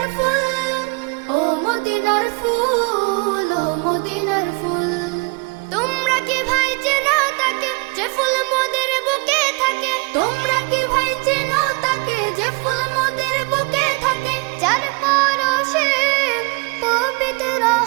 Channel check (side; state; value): left; quieter; 30.9 dB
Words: ফুল, ও মদিনার ফুল, ও মদিনার ফুল। তোমরা কি ভাই চেনো তাকে যে ফুল মোদের বুকে থাকে? তোমরা কি ভাই চেনো তাকে যে ফুল মোদের বুকে থাকে? যার পরশে পবিত্র